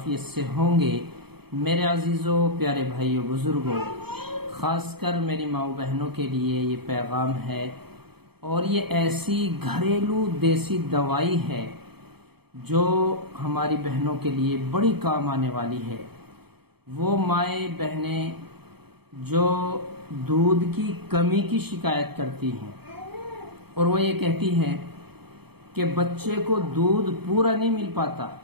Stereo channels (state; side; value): late; left; 0.97 ms